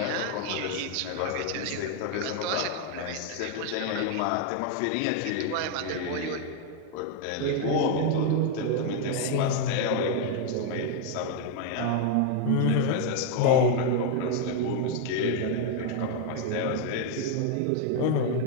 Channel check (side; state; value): both; different; correlation 0.01